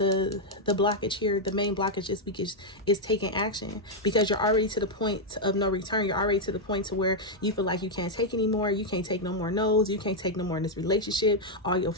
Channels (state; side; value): normal; both; correlation -0.01